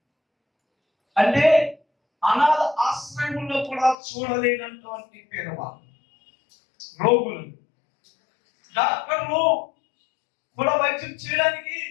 అంటే అనాథ ఆశ్రయంలో కూడా చూడలేనటువంటి పేదవాళ్ళు, రోగులు, డాక్టర్లు కూడా వైద్యం చేయడానికి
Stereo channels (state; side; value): drops out; right; at 4.0 s